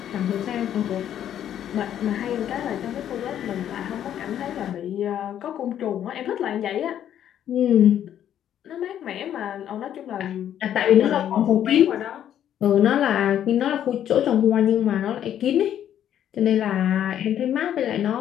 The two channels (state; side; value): quieter; right; 10.4 dB